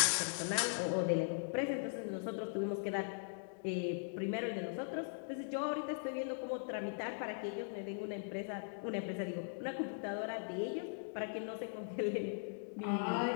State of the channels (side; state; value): right; silent; digital silence